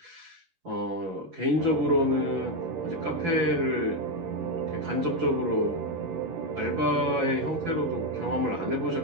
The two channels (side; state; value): left; late; 11 ms